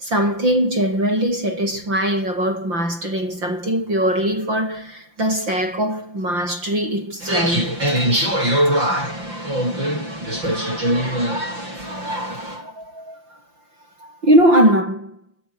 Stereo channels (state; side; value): late; left; 5.8 ms